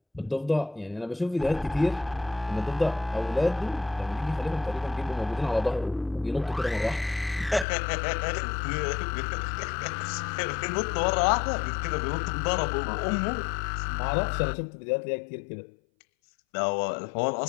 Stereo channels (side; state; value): right; drops out; at 7.7 s